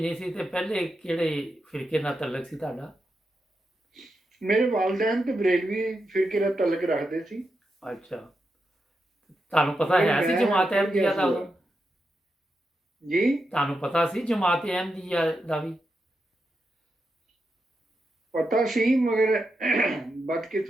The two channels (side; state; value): both; normal; correlation 0.86